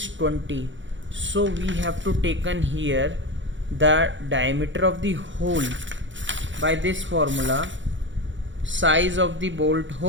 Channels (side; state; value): left; late; 0.55 ms